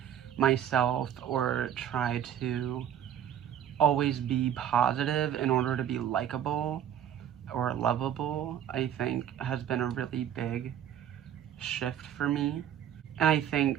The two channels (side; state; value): left; quieter; 10.0 dB